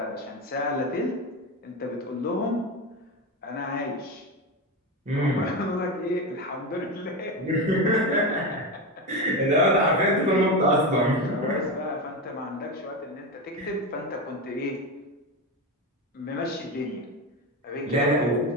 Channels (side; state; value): both; normal; correlation 0.17